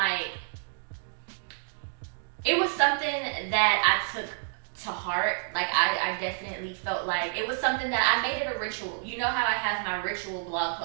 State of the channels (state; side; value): silent; left; digital silence